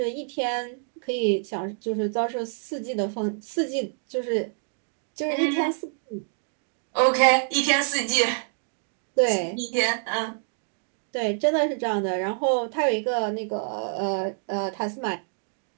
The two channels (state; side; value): silent; left; digital silence